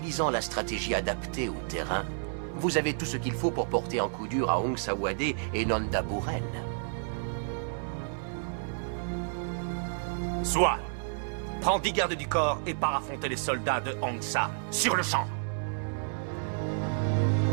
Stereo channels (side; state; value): left; silent; 57 dB below the other